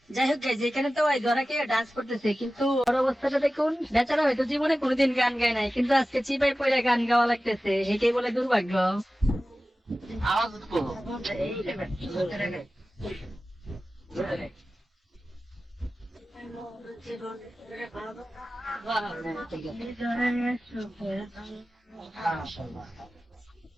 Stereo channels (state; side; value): normal; both; correlation 0.95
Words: যাই হোক গাইজ, এখানে তো ধরা কে ডান্স করতেছে, কিন্তু ওর অবস্থাটা দেখুন, বেচারা হয়তো জীবনে কোনোদিন গান গায় নাই, কিন্তু আজকে চিপাই পড়ে গান গাওয়া লাগতেছে, এটাই বলে দুর্ভাগ্য।